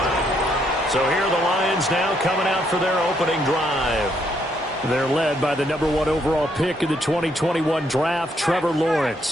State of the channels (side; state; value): both; normal; correlation 0.73